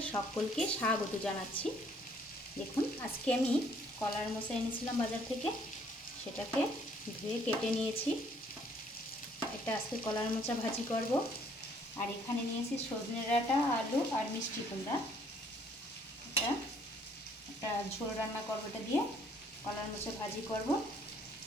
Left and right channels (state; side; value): normal; both; correlation 0.63